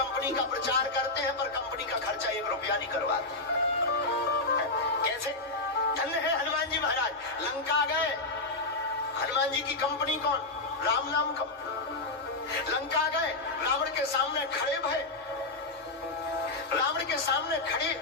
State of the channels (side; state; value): right; quieter; 3.2 dB